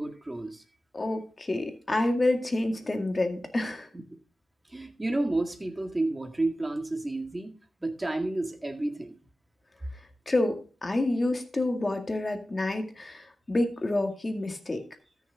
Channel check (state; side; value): normal; both; correlation 0.95